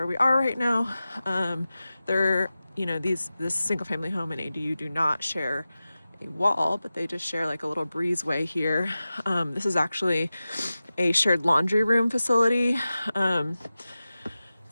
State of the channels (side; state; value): both; inverted; correlation -0.95